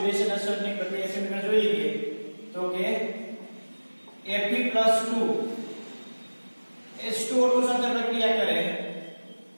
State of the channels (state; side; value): inverted; both; correlation -1.00